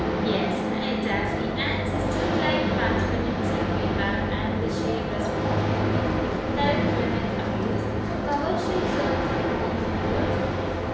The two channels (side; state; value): both; identical; correlation 1.00